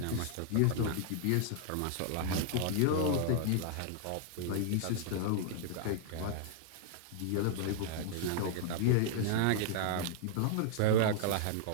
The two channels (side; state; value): both; different; correlation -0.01